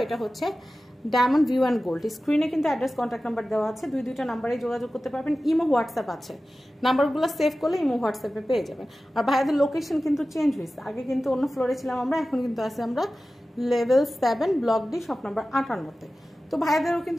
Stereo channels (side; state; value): both; normal; correlation 0.95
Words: এটা হচ্ছে ডায়মন্ড ভিউ অ্যান্ড গোল্ড। স্ক্রিনে কিন্তু অ্যাড্রেস, কন্ট্যাক্ট নাম্বার দেওয়া আছে। দুইটা নাম্বারে যোগাযোগ করতে পারবেন। ইমো, হোয়াটসঅ্যাপ আছে। নাম্বারগুলো সেভ করলে ইমো, হোয়াটসঅ্যাপে পেয়ে যাবেন। আর ভাইয়াদের লোকেশন কিন্তু চেঞ্জ হয়েছে। আগে কিন্তু অন্য ফ্লোরে ছিলাম আমরা, এখন কিন্তু আছে আমরা level 7 block D, shop number 58-তে। তো ভাইয়াদেরও